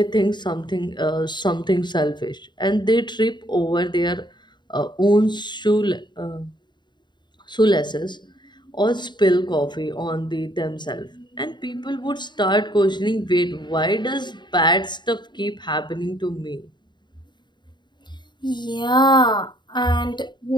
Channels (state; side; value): late; right; 0.22 ms